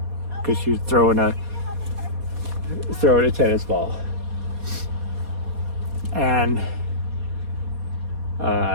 because she was throwing a tennis ball. And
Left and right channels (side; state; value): left; late; 4.2 ms